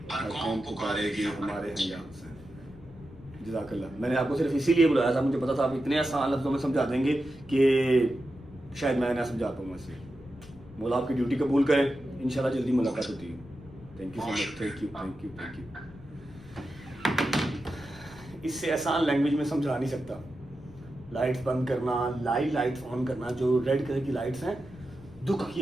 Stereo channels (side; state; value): left; noise; rumble, 20 dB below the sound